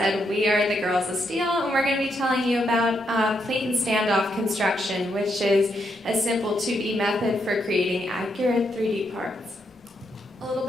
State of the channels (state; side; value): normal; both; correlation 0.79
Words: we are the Girls of Steel, and we're going to be telling you about plate and standoff construction, which is a simple 2D method for creating accurate 3D parts. A little